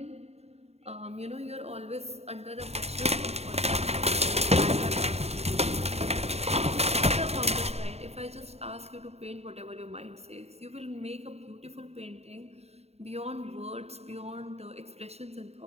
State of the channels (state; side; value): late; left; 0.30 ms